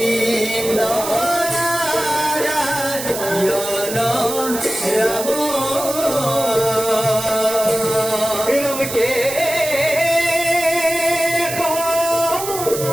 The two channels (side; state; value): right; noise; hiss, 7 dB below the sound